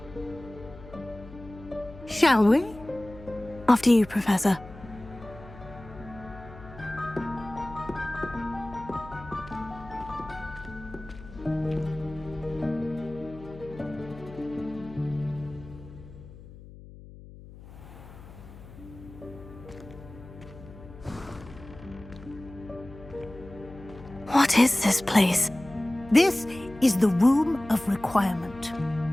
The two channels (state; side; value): noise; left; hum, 17 dB below the sound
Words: Shall we? After you, Professor. What is this place? This is the Room of Requirement.